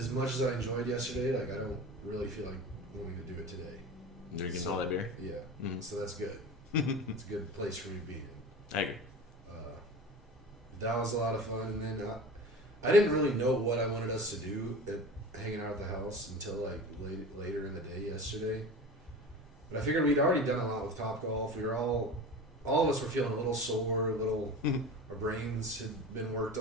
much as I enjoyed yesterday, like I don't really feel like wanting to do it today. Drinking all that beer? Yeah. Mm-hmm. So that's good. It's a good place for me to be in. I agree. That was a lot of fun, and then I didn't really know what I wanted us to do at hanging out at the house until like later in the day yesterday. But I figured we'd already done a lot with Topgolf. We were all of us were feeling a little sore, our brains had been worked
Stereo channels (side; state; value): both; normal; correlation 0.33